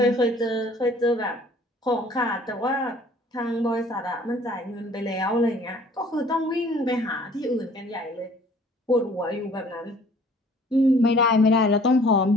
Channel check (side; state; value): both; normal; correlation 0.54